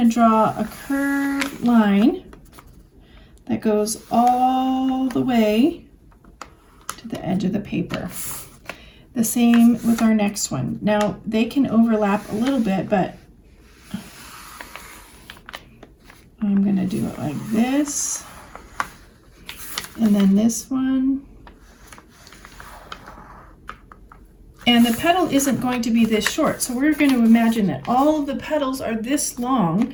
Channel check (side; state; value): both; identical; correlation 1.00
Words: draw a curved line that goes all the way to the edge of the paper. The same with our next one. Now they can overlap a little bit, but I'm going to do it like this, and then this one. And the petal isn't going to be this short, so we're going to imagine that all of the petals are this long.